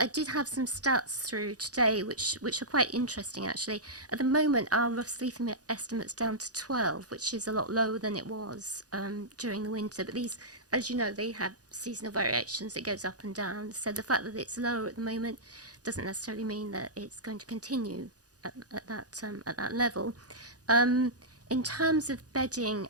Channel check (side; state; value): left; late; 0.68 ms